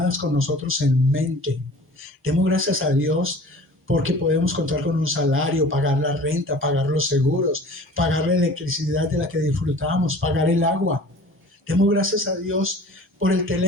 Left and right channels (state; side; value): normal; both; correlation 0.44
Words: con nosotros en mente. Demos gracias a Dios porque podemos contar con un salario, pagar la renta, pagar los seguros, pagar la electricidad de la que disfrutamos, pagar el agua. Demos gracias a Dios por el